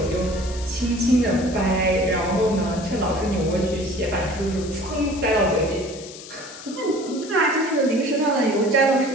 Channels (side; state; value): left; noise; hiss, 15 dB below the sound